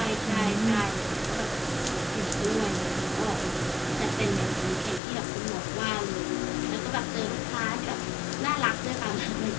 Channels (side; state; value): right; drops out; at 5.0 s